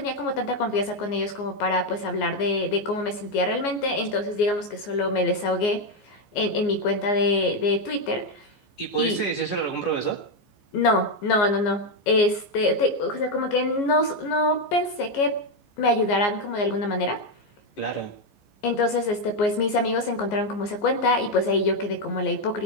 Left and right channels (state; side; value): late; right; 14 ms